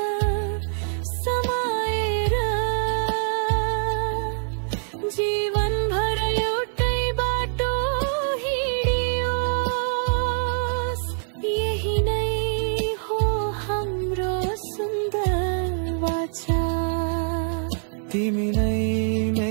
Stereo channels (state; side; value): silent; left; 62 dB below the other